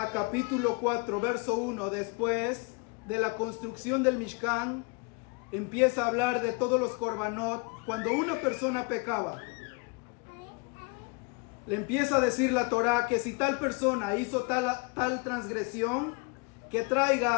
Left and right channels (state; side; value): quieter; right; 31.1 dB